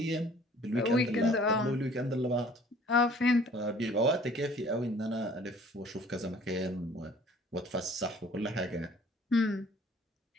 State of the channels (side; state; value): both; normal; correlation 0.53